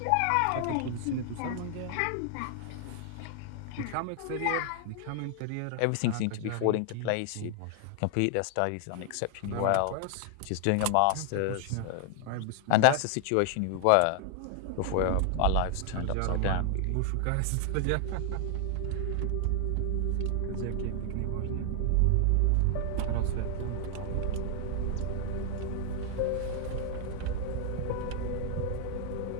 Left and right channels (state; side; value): different; both; correlation 0.00